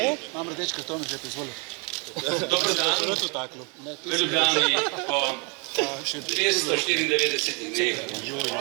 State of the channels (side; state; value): left; quieter; 33.4 dB